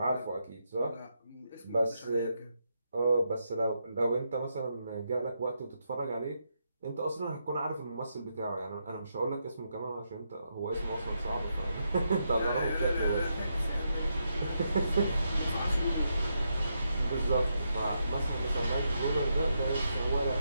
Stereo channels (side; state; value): both; inverted; correlation -0.82